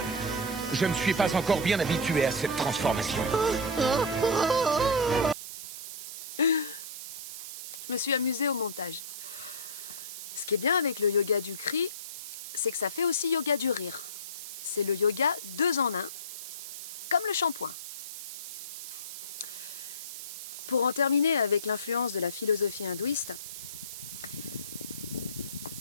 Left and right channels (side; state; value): right; noise; hiss, 9 dB below the sound